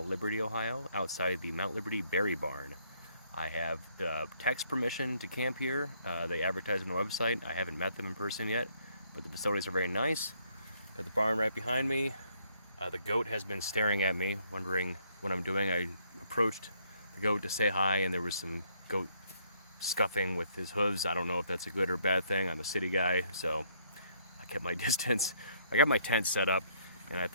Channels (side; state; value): both; inverted; correlation -0.68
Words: Liberty, Ohio, outside the Mount Liberty Berry Barn. I have text permission to camp here. They advertise on the website. I haven't met them in person yet, but the facilities are very nice. Got the barn right behind me. The goat has been staring at me, wondering what I'm doing. I approached the goat to say hi, and there was some goat scuffing with his hooves. I don't know if that's a good or bad thing. I'm a city guy, so I kept my distance. I got my tent set up, and I